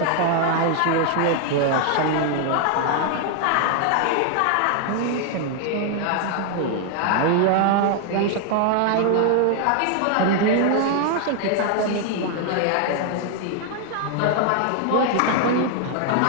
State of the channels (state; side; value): different; both; correlation 0.00